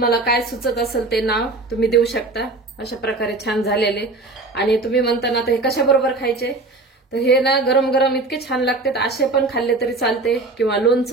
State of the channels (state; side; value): quieter; left; 3.3 dB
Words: काय सुचत असेल ते नाव तुम्ही देऊ शकता. अशा प्रकारे छान झालेले. आणि तुम्ही म्हणता ना, तर हे कशाबरोबर खायचे, तर हे ना गरम गरम इतके छान लागतात. असे पण खाल्ले तरी चालते, किंवा